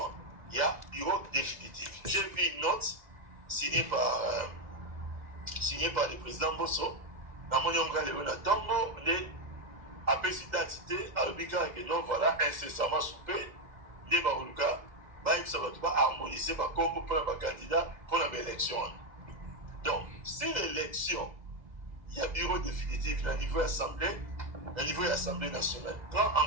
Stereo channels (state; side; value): late; left; 2.0 ms